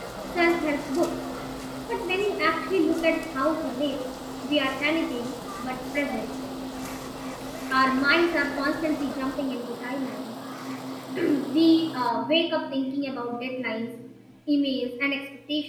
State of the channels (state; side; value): identical; both; correlation 1.00